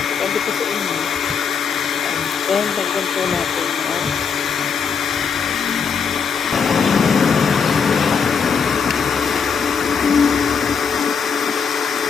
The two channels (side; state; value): right; quieter; 6.1 dB